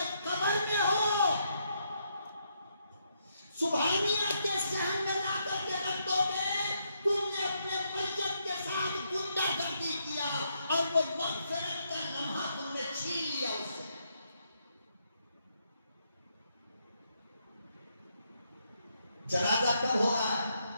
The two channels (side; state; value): both; inverted; correlation -0.78